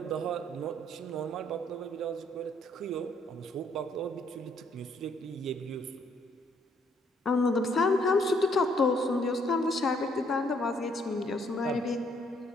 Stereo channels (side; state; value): both; normal; correlation 0.68